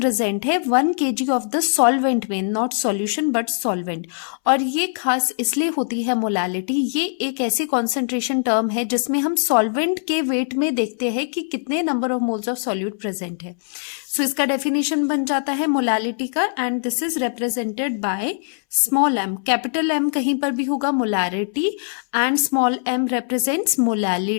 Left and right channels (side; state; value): right; silent; 65 dB below the other